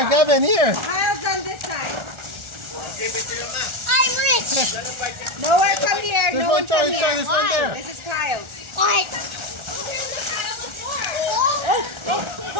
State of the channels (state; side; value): late; left; 1.4 ms